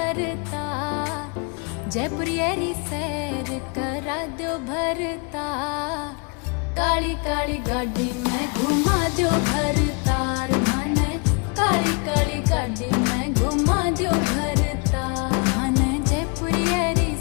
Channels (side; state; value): right; quieter; 34.2 dB